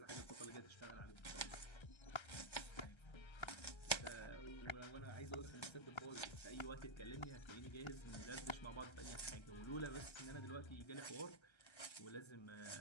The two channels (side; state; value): right; late; 1.3 ms